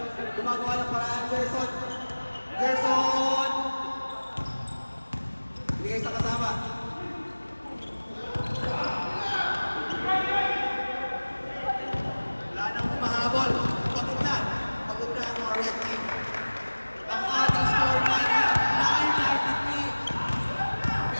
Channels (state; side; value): inverted; both; correlation -1.00